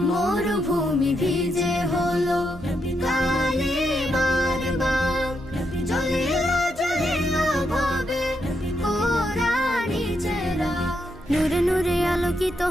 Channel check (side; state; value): both; normal; correlation 0.80